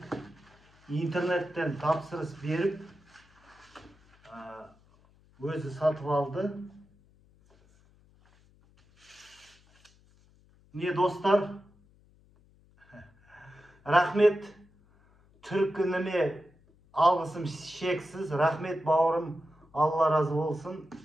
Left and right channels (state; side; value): noise; left; hum, 30 dB below the sound